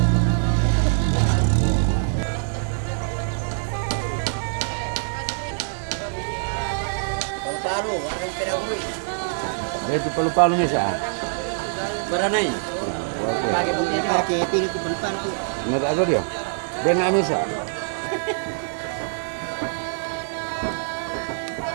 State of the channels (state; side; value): silent; left; digital silence